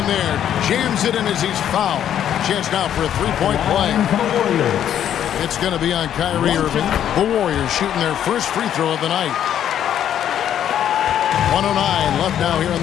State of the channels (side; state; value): right; quieter; 10.1 dB